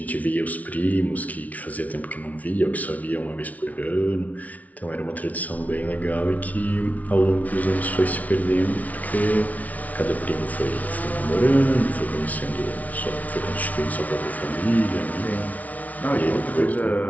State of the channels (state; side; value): late; right; 0.071 ms